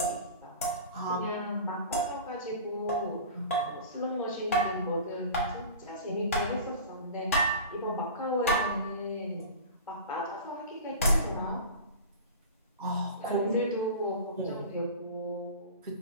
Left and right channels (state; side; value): inverted; both; correlation -0.35